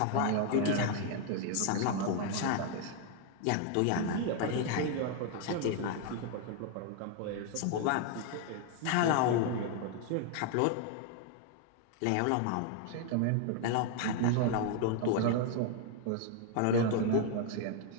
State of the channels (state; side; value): different; both; correlation 0.00